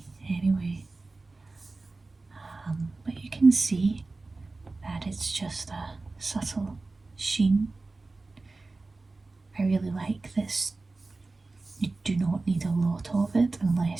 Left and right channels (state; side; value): quieter; left; 3.5 dB